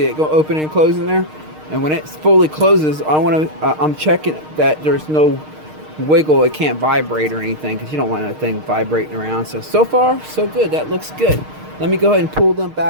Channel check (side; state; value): left; late; 6.5 ms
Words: it go open and closing there? And when it fully closes, I'm checking that there's no wiggle. It can't vibrate or anything, because you don't want that thing vibrating around. So far, so good. That looks good. Let me go ahead and pull them